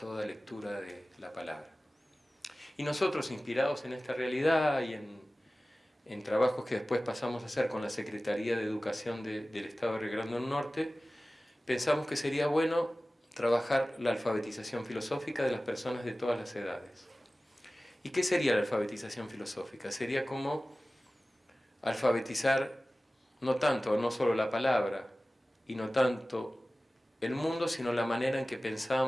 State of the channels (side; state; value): both; normal; correlation 0.97